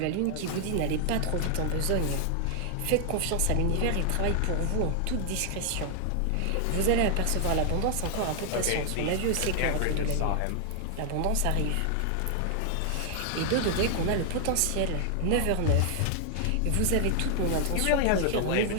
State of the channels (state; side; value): different; both; correlation 0.00